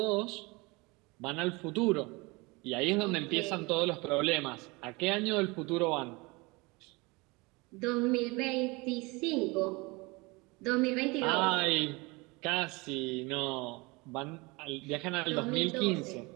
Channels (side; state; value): left; quieter; 25.5 dB